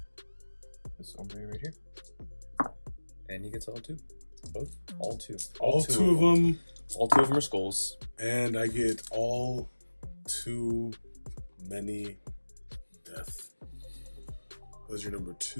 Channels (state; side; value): inverted; both; correlation -1.00